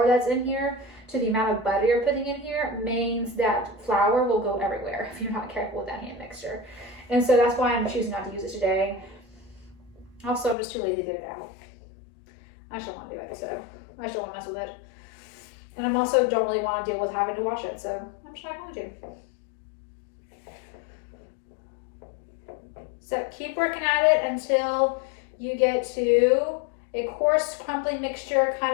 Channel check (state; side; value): drops out; right; at 10.6 s